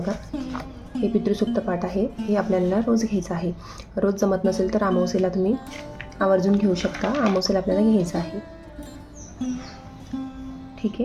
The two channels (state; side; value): identical; both; correlation 1.00